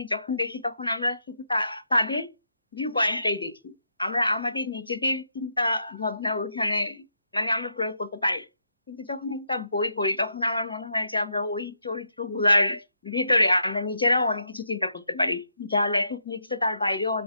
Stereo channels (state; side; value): inverted; both; correlation -0.79